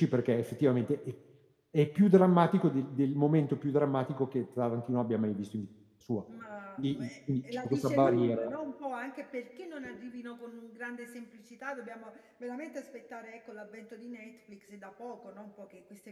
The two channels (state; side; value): identical; both; correlation 1.00